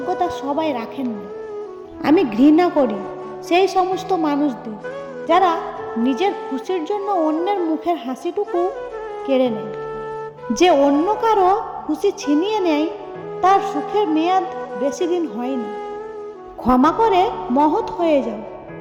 সবাই রাখেন না। আমি ঘৃণা করি সেই সমস্ত মানুষদের যারা নিজের খুশির জন্য অন্যের মুখের হাসিটুকু কেড়ে নেয়। যে অন্য কারো খুশি ছিনিয়ে নেয়, তার সুখের মেয়াদ বেশি দিন হয় না। ক্ষমা করে মহৎ হয়ে যাও,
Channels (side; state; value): both; identical; correlation 1.00